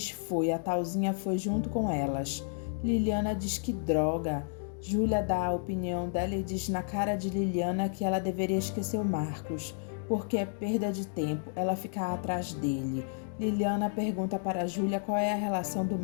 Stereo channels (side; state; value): right; silent; digital silence